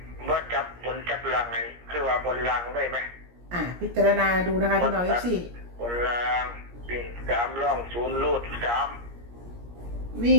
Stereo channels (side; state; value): left; late; 17 ms